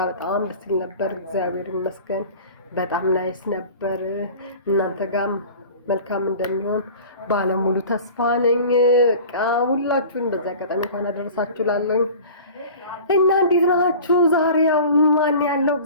በጣም ደስ ይል ነበር እግዚአብሔር ይመስገን። በጣም ናይስ ነበር። እናንተ ጋርም መልካም እንደሚሆን ባለሙሉ ተስፋ ነኝ። በቃ ሁላችሁም በዛ አጋጣሚ እንኳን አደረሳችሁ ላለኝ እና እንዴት ናችሁ? ዛሬ ያው ማን ያለው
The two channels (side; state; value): both; inverted; correlation -0.41